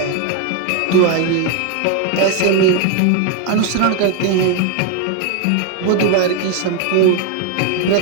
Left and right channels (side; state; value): both; different; correlation 0.01